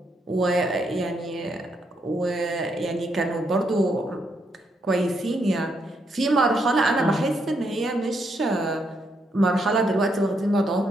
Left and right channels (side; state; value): both; normal; correlation 0.77